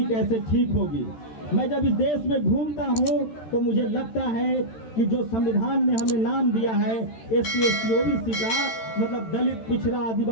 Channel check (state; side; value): late; right; 13 ms